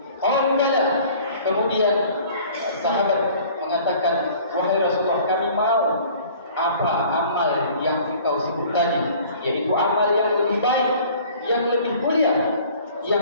Kemudian sahabat mengatakan, wahai Rasulullah, kami mau apa amal yang engkau sebut tadi, yaitu amal yang lebih baik, yang lebih mulia,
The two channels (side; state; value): both; inverted; correlation -0.50